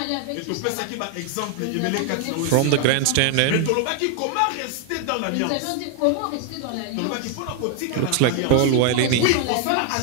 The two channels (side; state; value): both; different; correlation 0.00